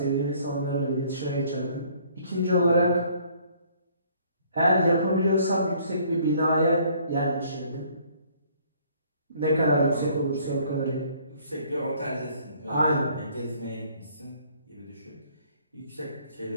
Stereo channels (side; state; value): both; inverted; correlation -0.60